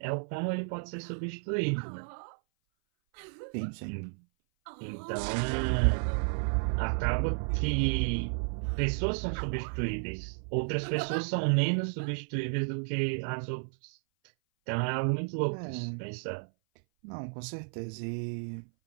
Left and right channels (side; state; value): left; silent; 56 dB below the other